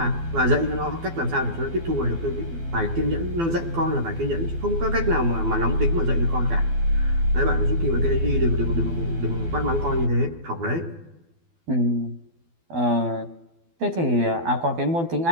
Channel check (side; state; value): left; late; 12 ms